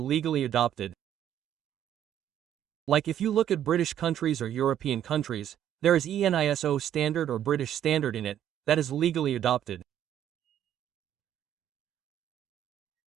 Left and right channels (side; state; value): left; quieter; 10.6 dB